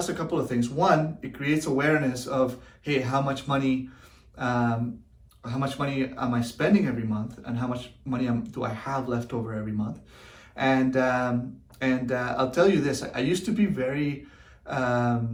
a couple of things. One, it creates awareness of, hey, how much money am I spending every month, and how much money do I have left over every month? And I'll tell you this, I used to be I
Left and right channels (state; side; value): identical; both; correlation 1.00